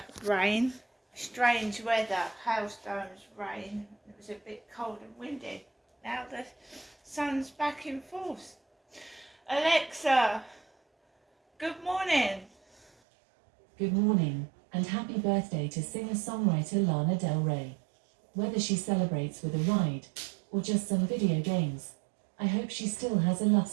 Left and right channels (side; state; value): left; drops out; at 12.9 s